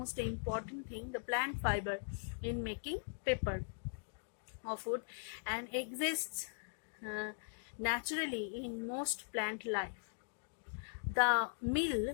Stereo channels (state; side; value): silent; right; digital silence